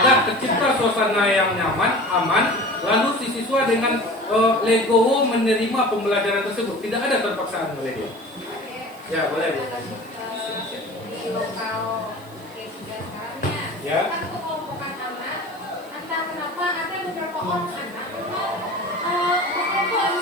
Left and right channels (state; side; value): noise; right; hiss, 25 dB below the sound